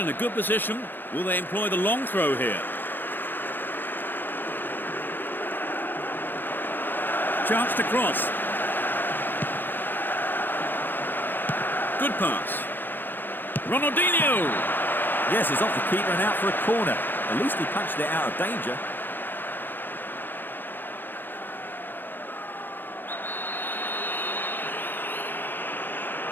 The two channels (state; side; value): late; right; 0.094 ms